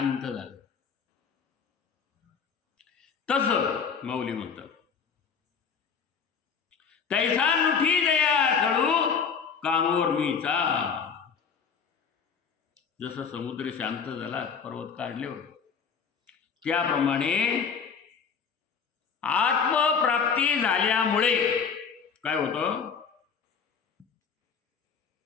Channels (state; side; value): quieter; right; 6.2 dB